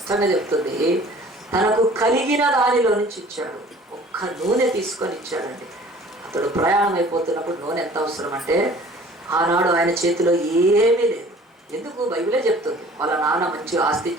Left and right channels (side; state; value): both; normal; correlation 0.49